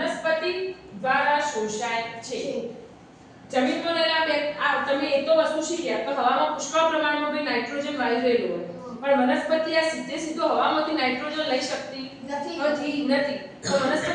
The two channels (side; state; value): both; identical; correlation 1.00